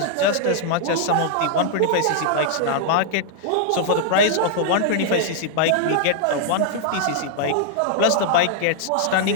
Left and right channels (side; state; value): both; different; correlation -0.01